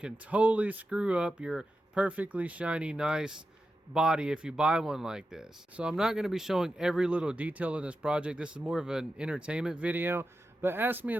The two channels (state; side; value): normal; both; correlation 0.91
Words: totally screw up your perfectly shiny, nice body if you buy one like this. So I'm not going to be showing every little detail in this project. This is more of an entertainment video, but ask me